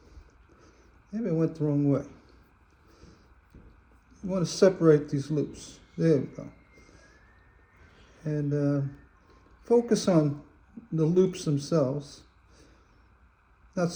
Maybe I went the wrong way. You want to separate these loops. There we go. And focus on the loops themselves, not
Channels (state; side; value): identical; both; correlation 1.00